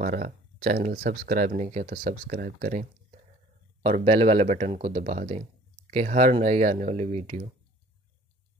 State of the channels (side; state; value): both; normal; correlation 0.52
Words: चैनल सब्सक्राइब नहीं किया तो सब्सक्राइब करें और बेल वाले बटन को दबा दें कि हर नई आने वाली वीडियो